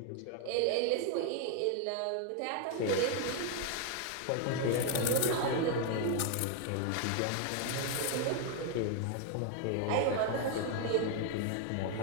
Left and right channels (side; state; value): both; different; correlation 0.01